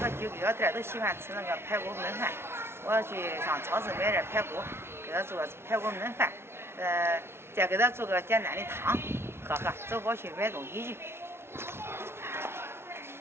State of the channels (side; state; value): left; late; 0.12 ms